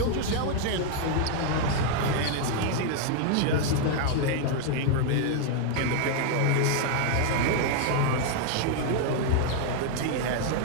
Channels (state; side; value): different; both; correlation 0.00